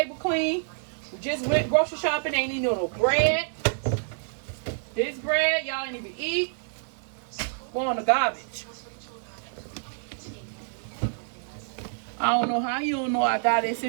clean. We just went grocery shopping, ain't even no bread. This bread, y'all ain't even eat. Go on the garbage. I don't know how you don't know I got this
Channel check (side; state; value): left; silent; digital silence